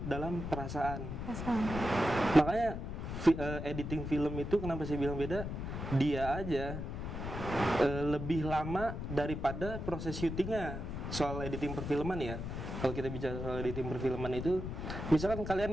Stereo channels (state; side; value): noise; left; rumble, 5 dB below the sound